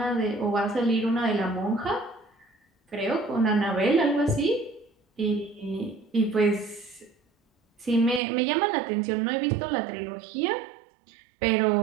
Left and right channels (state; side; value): drops out; left; at 8.2 s